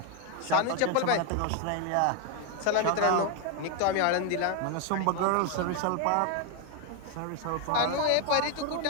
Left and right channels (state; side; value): different; both; correlation 0.01